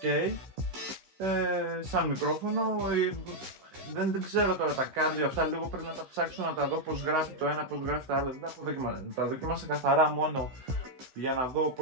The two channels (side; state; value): left; late; 15 ms